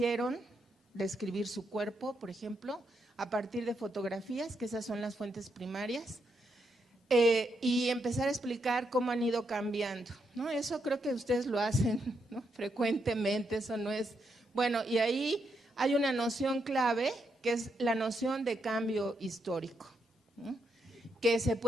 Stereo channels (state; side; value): normal; both; correlation 0.80